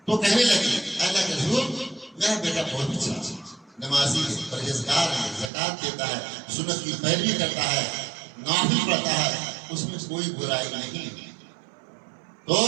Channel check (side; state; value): left; drops out; at 5.5 s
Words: تو کہنے لگی اللہ کے رسول میرا بیٹا بہت اچھا، نمازی ہے، پرہیزگار ہے، زکات دیتا ہے، سنت کی پیروی کرتا ہے، نافل پڑھتا ہے، اس میں کوئی برائی نہیں۔ تو